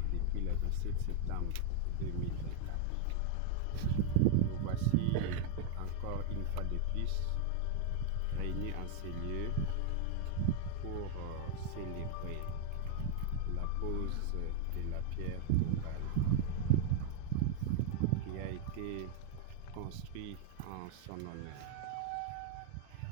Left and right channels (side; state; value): both; different; correlation 0.00